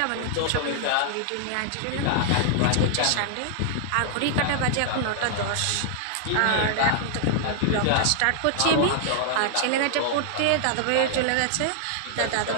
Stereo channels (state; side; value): different; both; correlation -0.01